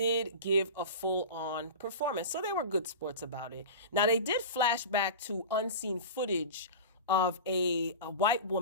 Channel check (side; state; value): both; inverted; correlation -0.30